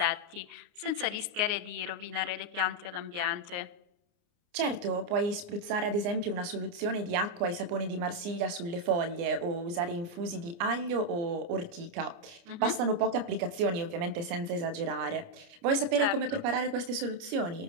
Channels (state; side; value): late; left; 29 ms